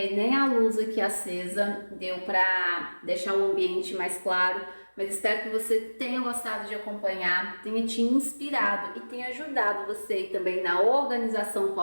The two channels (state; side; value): inverted; both; correlation -1.00